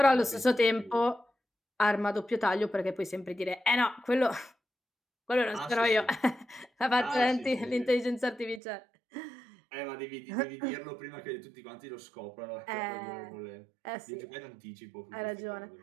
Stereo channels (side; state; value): left; drops out; at 8.6 s